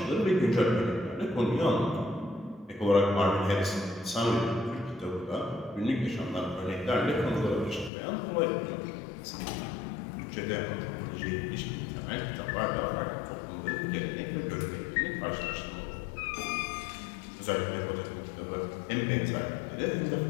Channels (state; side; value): drops out; right; at 7.9 s